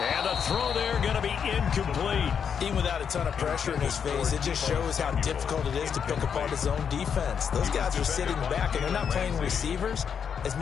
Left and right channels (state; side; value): quieter; right; 7.2 dB